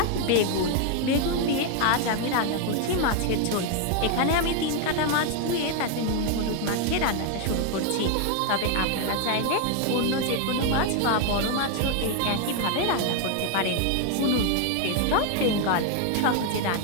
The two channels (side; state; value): both; different; correlation 0.01